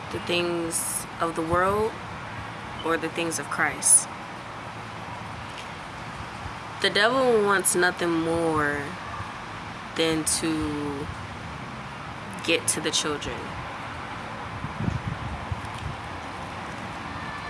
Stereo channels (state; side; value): identical; both; correlation 1.00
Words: the things of the world or the things of Christ? The devil wants nothing more than to get to the children.